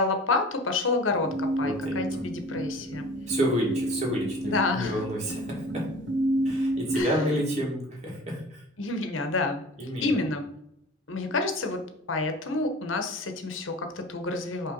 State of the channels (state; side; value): normal; both; correlation 0.41